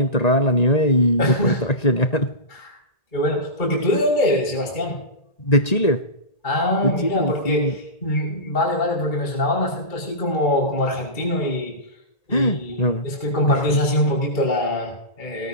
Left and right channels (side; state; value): right; late; 1.8 ms